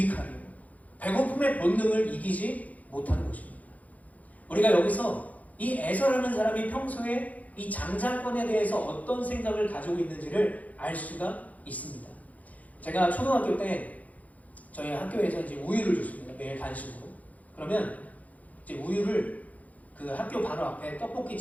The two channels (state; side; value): late; right; 0.073 ms